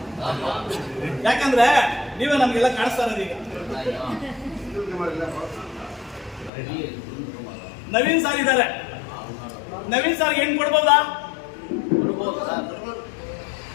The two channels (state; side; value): drops out; right; at 6.5 s